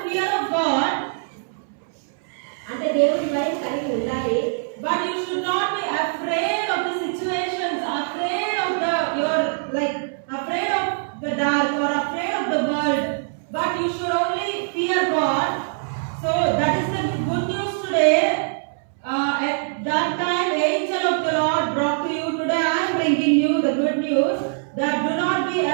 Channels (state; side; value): silent; left; 62 dB below the other